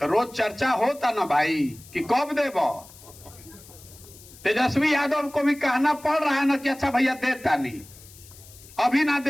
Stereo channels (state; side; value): noise; left; hiss, 21 dB below the sound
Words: रोज चर्चा होता ना भाई कि कब देबो। तेजस्वी यादव को भी कहना पड़ रहा है ना कि अच्छा भैया देता नहीं, अभी ना